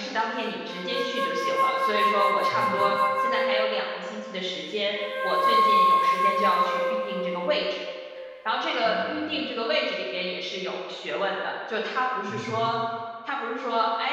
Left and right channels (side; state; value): both; identical; correlation 1.00